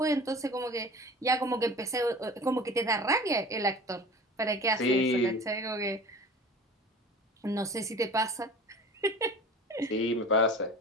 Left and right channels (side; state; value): both; normal; correlation 0.39